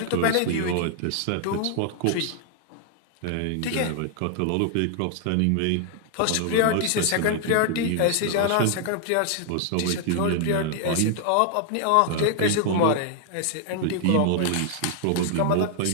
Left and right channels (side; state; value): both; different; correlation 0.00